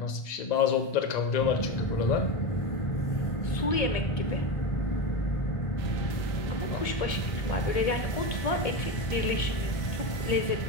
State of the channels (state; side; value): late; right; 1.8 ms